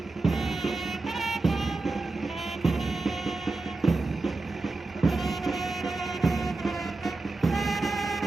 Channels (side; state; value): left; quieter; 3.4 dB